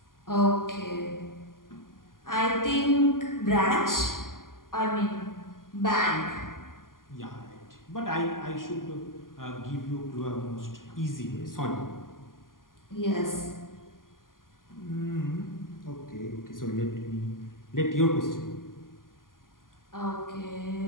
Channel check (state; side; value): late; right; 0.91 ms